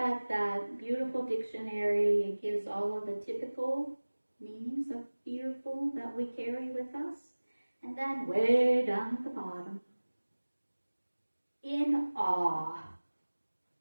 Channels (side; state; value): both; inverted; correlation -1.00